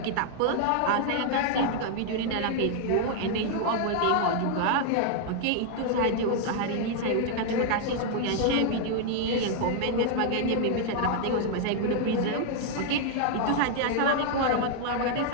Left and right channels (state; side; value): different; both; correlation 0.00